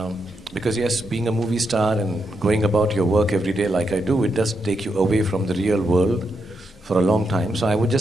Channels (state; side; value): normal; both; correlation 0.82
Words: because yes, being a movie star and going about your work every day like I do, it does take you away from the real world for a long time. So I would